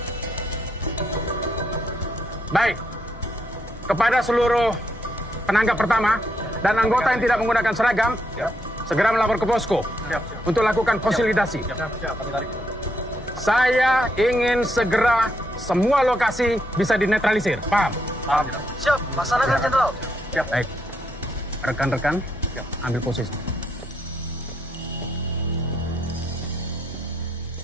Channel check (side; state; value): both; normal; correlation 0.77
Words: Baik. Kepada seluruh penanggap pertama dan anggota yang tidak menggunakan seragam, segera melapor ke posko untuk lakukan konsolidasi. Saya ingin segera semua lokasi bisa dinetralisir. Paham? Paham. Siap, laksanakan Jenderal. Baik. Rekan-rekan, ambil posisi.